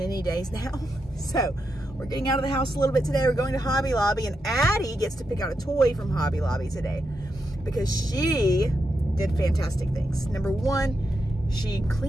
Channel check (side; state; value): both; normal; correlation 0.85